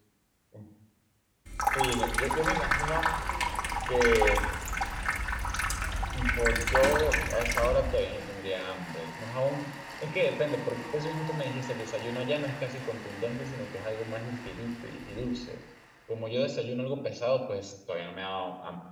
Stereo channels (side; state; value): both; identical; correlation 1.00